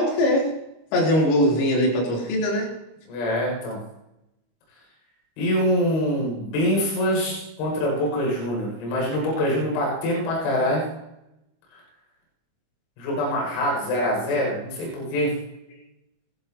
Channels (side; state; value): right; late; 25 ms